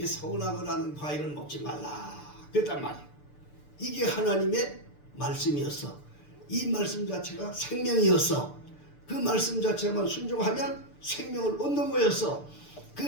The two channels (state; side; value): late; right; 6.8 ms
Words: 선악을 하는 과일은 먹지 말라 그랬단 말이야. 이게 하나님의 말씀이었어. 이 말씀 자체가 생명이었어. 그 말씀 자체만 순종하면 생명을 얻는 거였어. 그